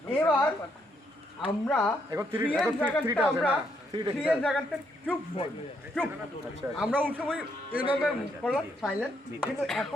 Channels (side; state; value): both; normal; correlation 0.74